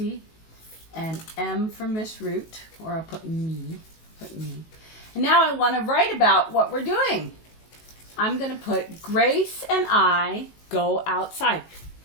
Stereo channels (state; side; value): late; right; 19 ms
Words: and M for Miss Root, or I'll put me. And now I want to write about what we're doing. I'm going to put Grace and I go outside.